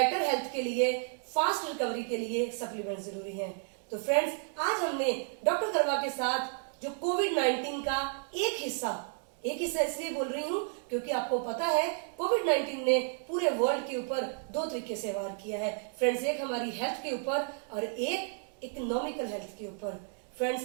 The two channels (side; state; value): left; silent; 56 dB below the other